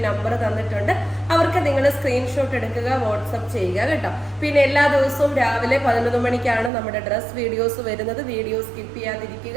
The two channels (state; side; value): drops out; left; at 6.7 s